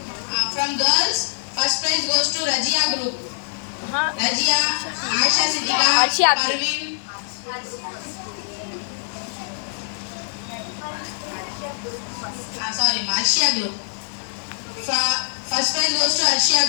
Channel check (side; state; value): right; silent; 64 dB below the other